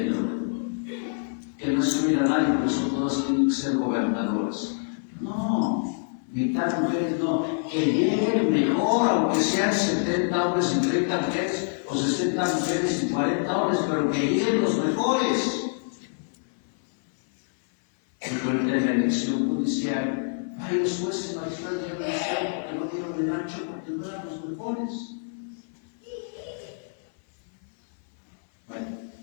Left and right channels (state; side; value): silent; right; 61 dB below the other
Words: que no excluir a nadie, por eso todos tienen que ser gobernadores. No, mitad mujeres no, que lleguen mejor, aunque sean 70 hombres y 30 mujeres, o 60 mujeres y 40 hombres, pero que lleguen los mejores. Porque en la elección judicial, los jueces magistrados no eligieron porque no dieron el ancho, porque no eran los mejores. Bueno,